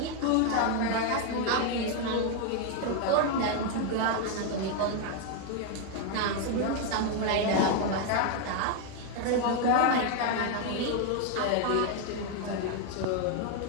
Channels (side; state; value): both; different; correlation 0.01